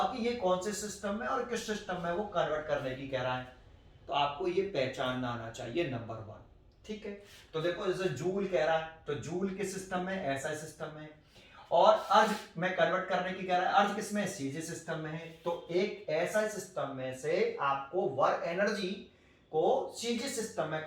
कि ये कौन से सिस्टम में और किस सिस्टम में वो कन्वर्ट करने की कह रहा है। तो आपको ये पहचानना आना चाहिए, नंबर 1, ठीक है। तो देखो जैसे जूल कह रहा है तो जूल किस सिस्टम में? ऐसा सिस्टम में। और अर्ज में कन्वर्ट करने की कह रहा है, अर्ज किसमें? सीजी सिस्टम में है। तो एक ऐसा सिस्टम में से आपको वर्क एनर्जी को सीजी सिस्टम में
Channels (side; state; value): both; identical; correlation 1.00